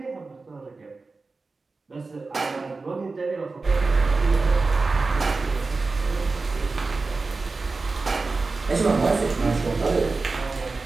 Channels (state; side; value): quieter; left; 3.8 dB